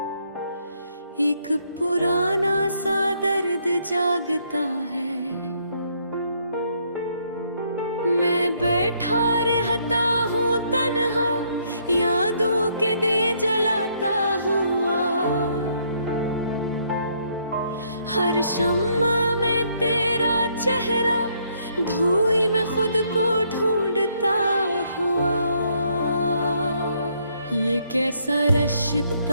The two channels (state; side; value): inverted; both; correlation -0.70